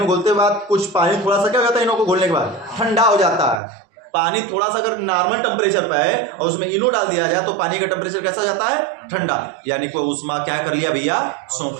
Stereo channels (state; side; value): drops out; left; at 3.6 s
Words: घोलते बाद कुछ पानी थोड़ा सा क्या हो जाता है? इनो को घोलने के बाद ठंडा हो जाता है। पानी थोड़ा सा अगर नॉर्मल टेम्परेचर पर है और उसमें इनो डाल दिया जाए तो पानी का टेम्परेचर कैसा जाता है? ठंडा। यानी कि उष्मा क्या कर लिया भैया?